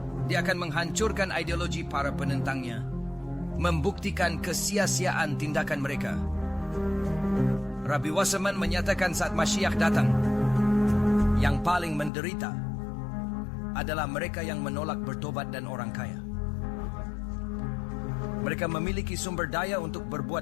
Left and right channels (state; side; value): drops out; right; at 12.1 s